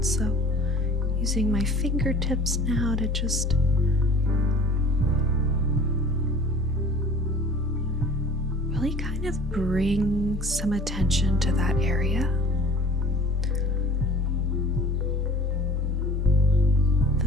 so using my fingertips now to just really kind of bring some attention to that area. The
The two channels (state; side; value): normal; both; correlation 0.45